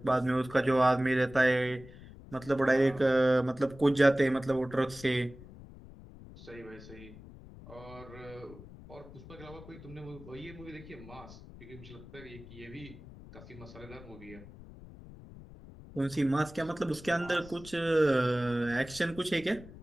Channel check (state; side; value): noise; left; rumble, 17 dB below the sound